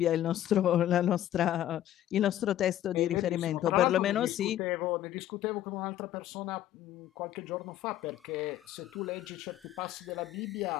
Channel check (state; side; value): quieter; right; 12.4 dB